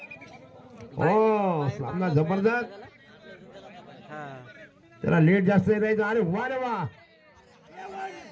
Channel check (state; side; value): identical; both; correlation 1.00